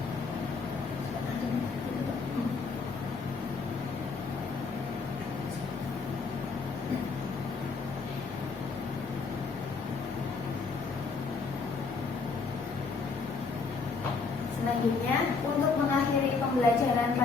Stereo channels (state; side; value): quieter; right; 4.6 dB